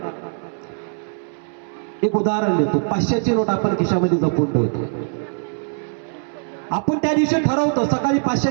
एक उदाहरण देतो. 500ची नोट आपण खिशामध्ये जपून ठेवतो. आपण त्या दिवशी ठरवतो, सकाळी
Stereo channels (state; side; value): silent; left; 65 dB below the other